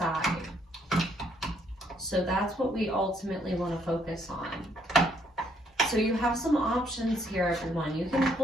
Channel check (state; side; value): normal; both; correlation 0.69